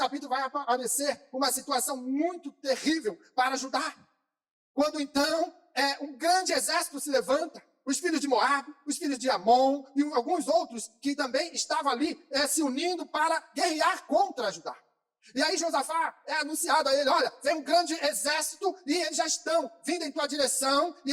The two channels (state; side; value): identical; both; correlation 1.00